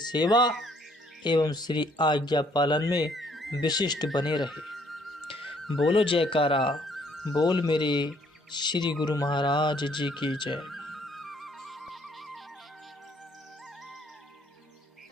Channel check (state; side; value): normal; both; correlation 0.64